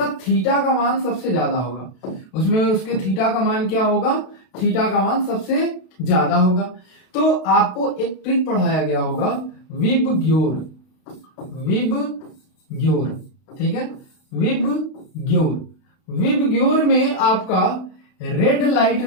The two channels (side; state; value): right; late; 32 ms